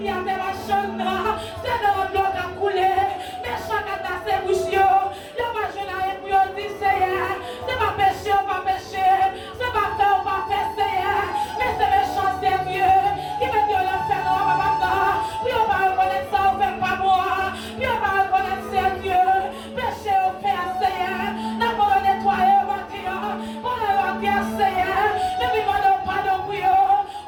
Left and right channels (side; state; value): both; identical; correlation 1.00